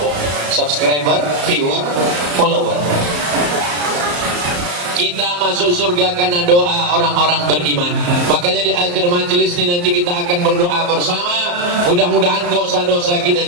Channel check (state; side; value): late; left; 34 ms